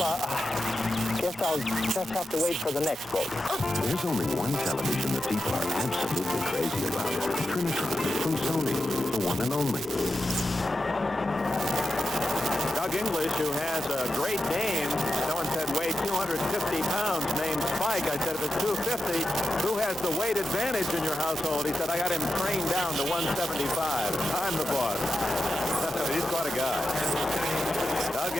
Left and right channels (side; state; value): both; normal; correlation 0.89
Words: Guess I'll just have to wait for the next boat. There's only one television that people are absolutely crazy about. Trinitron from Sony, the one and only. Doug English, who has a great name, someone said weighed 250 pounds, named Spike. I said, if it's 250, who has the weight advantage in your household? He said, I got him trained down to 175. I'm the boss. He's quite a guy. Doug